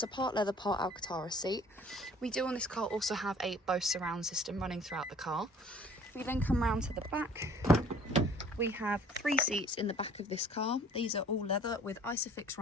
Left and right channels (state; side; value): normal; both; correlation 0.52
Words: a part leather, part Alcantara seat. We do on this car also have a Bose surround system running throughout the car. If we then come round to the back, we have three seats in the back of this car. These are all leather with Isofix